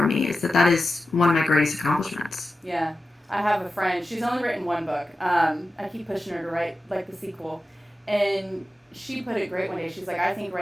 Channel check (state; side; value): normal; both; correlation 0.93